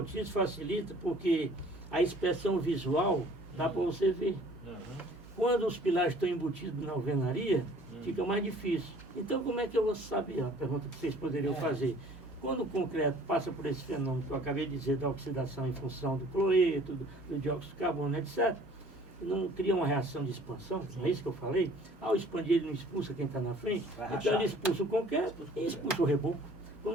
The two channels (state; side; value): normal; both; correlation 0.53